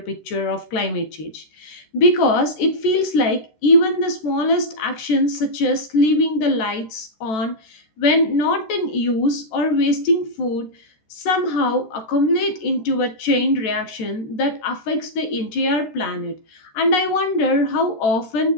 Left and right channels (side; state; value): right; late; 13 ms